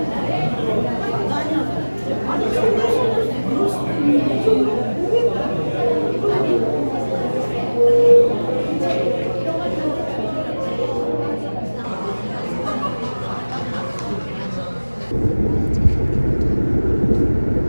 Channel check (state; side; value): inverted; both; correlation -1.00